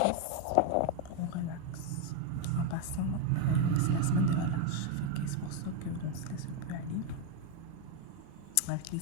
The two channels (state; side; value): different; both; correlation 0.01